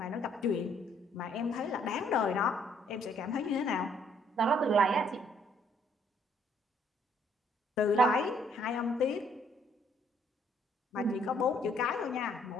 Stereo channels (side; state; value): both; normal; correlation 0.66